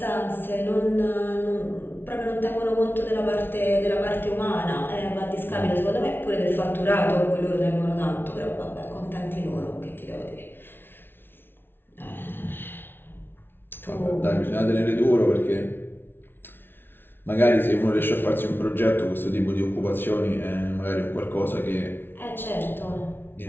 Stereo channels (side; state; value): right; late; 0.10 ms